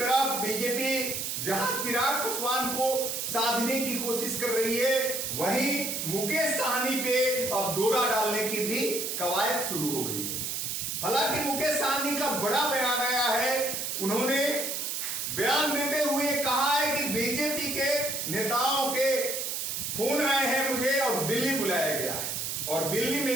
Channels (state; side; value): noise; right; hiss, 2 dB below the sound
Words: बीजेपी जहां चिराग पासवान को साधने की कोशिश कर रही है, वहीं मुकेश सहनी पे अब डोरा डालने की भी कवायद शुरू हो गई है। हालांकि मुकेश सहनी का बड़ा बयान आया है। उन्होंने बयान देते हुए कहा है कि बीजेपी के नेताओं के फोन आए हैं मुझे और दिल्ली बुलाया गया है और दिल्ली